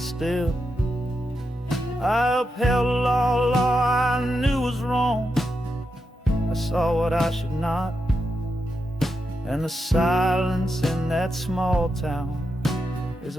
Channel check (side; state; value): both; normal; correlation 0.86